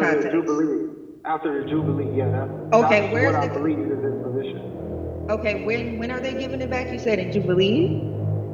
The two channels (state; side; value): identical; both; correlation 1.00